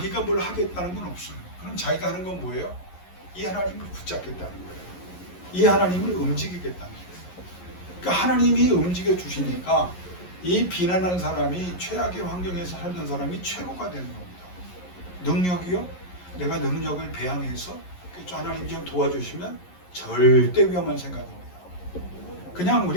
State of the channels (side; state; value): right; late; 11 ms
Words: 뭘 하겠다는 건 없어요. 그럼 자기가 하는 건 뭐예요? 이 하나님을 붙잡겠다는 거예요. 이 하나님을 움직이겠다는 거예요. 그러니까 하나님이 움직여 주시니까 이 비난한 사람이 최악의 환경에서 살던 사람이 최고가 되는 겁니다. 능력이요? 내가 능력을 배양해서 하나님 좀 도와주시면 절대 위험한 생각입니다. 그냥